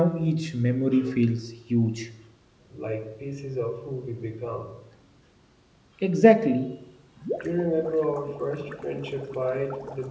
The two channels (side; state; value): both; identical; correlation 1.00